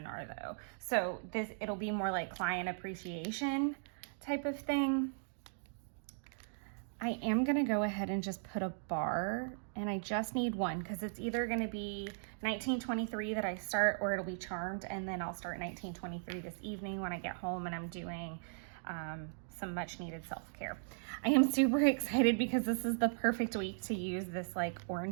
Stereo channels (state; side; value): silent; left; digital silence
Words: though. So it'll be more like client appreciation type of thing. I am gonna go ahead and just put a bar, and I just need one, because it's either gonna be 1923 that I start, or it'll be Charmed, and then I'll start 1923 this evening when I get home and I'm doing some much needed self-care. I am super excited because this is the perfect week to use this like